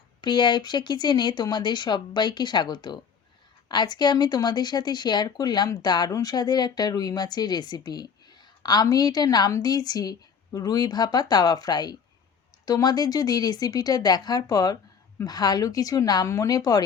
প্রিয়া ইপসা কিচেনে তোমাদের সবাইকে স্বাগত। আজকে আমি তোমাদের সাথে শেয়ার করলাম দারুণ স্বাদের একটা রুই মাছের রেসিপি। আমি এটা নাম দিয়েছি রুই ভাপা তাওয়া ফ্রাই। তোমাদের যদি রেসিপিটা দেখার পর ভালো কিছু নাম মনে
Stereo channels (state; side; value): quieter; right; 6.6 dB